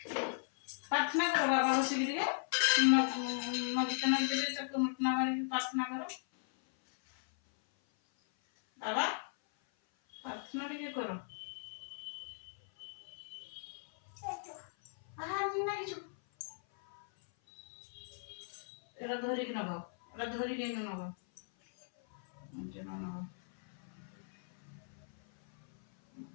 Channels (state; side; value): silent; right; 53 dB below the other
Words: प्रार्थना करो बाबा बस नदीते नदी चक्कर मुटना मारी प्रार्थना करो बाबा प्रार्थना टिके करो एरा धरिक नब एरा धरिक नब नब